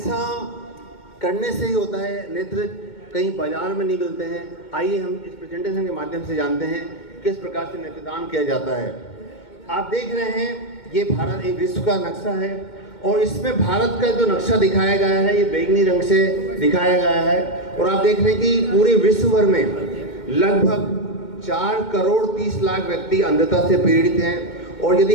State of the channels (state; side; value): late; right; 2.2 ms